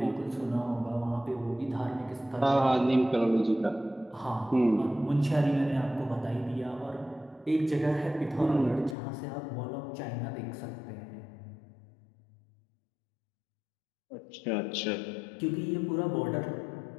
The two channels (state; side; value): drops out; right; at 9.0 s